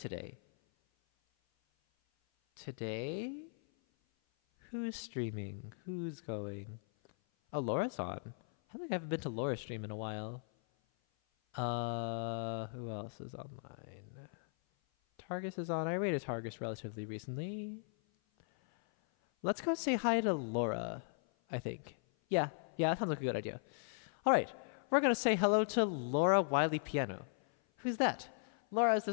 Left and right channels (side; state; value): right; silent; 53 dB below the other